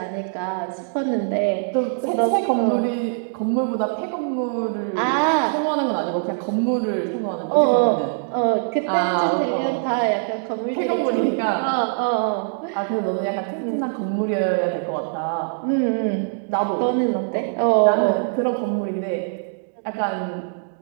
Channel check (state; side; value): silent; left; digital silence